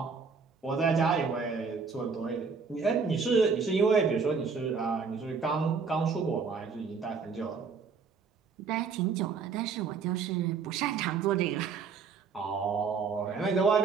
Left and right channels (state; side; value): quieter; left; 5.4 dB